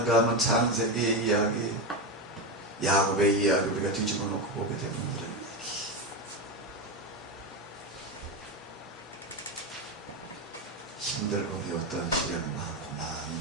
하면 창세기 이야기, 야곱의 이야기 우리가 뒤집어 놓고 보게 되면 이런 얘기. 힘들고 어려웠던 시련을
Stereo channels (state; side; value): normal; both; correlation 0.13